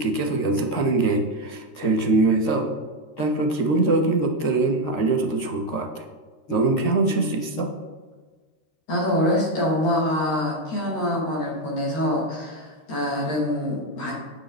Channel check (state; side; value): late; right; 13 ms